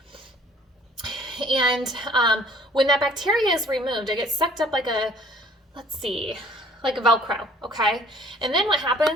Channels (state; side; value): normal; both; correlation 0.54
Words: And when that bacteria is removed, it gets sucked up like a, let's see, like a Velcro, okay? And then what